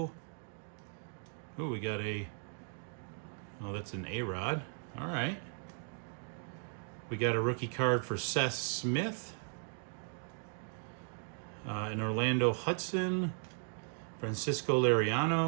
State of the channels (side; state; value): left; silent; 53 dB below the other